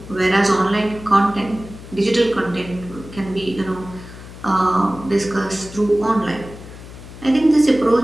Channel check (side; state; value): left; noise; hum, 16 dB below the sound